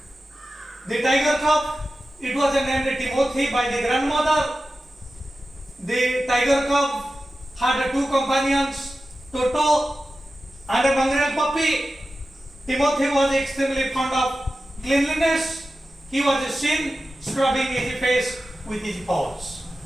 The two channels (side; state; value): both; normal; correlation 0.93